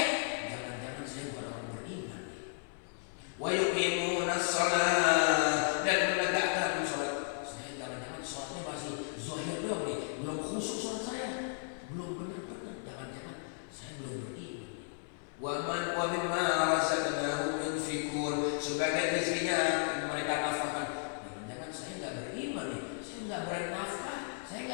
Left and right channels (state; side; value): silent; right; 55 dB below the other